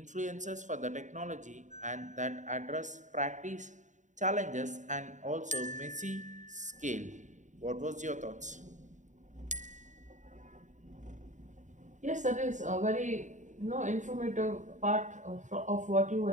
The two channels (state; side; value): late; left; 0.36 ms